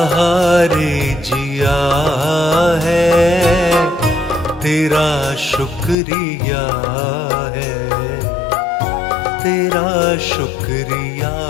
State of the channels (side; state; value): right; drops out; at 6.0 s